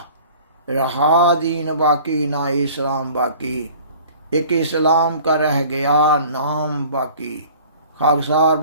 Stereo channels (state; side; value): inverted; both; correlation -0.47